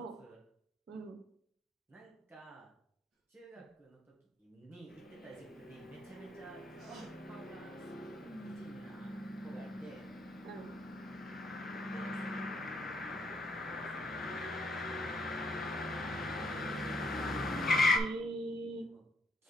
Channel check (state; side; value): normal; both; correlation 0.71